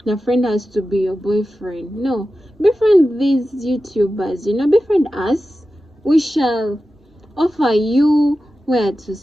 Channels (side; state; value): both; normal; correlation 0.93